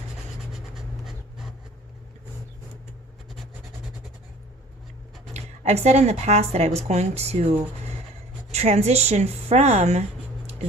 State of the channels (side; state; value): both; normal; correlation 0.49